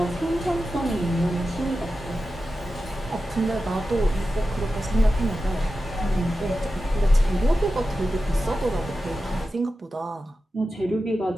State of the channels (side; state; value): both; normal; correlation 0.92